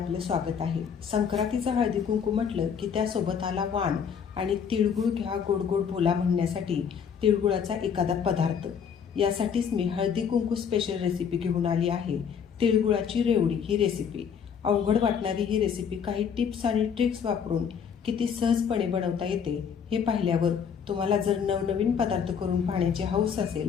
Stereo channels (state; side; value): quieter; right; 7.2 dB